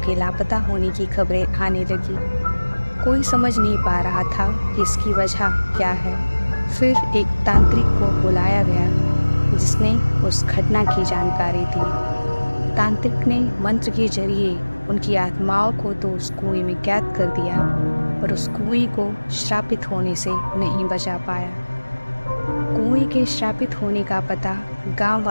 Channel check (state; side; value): inverted; both; correlation -1.00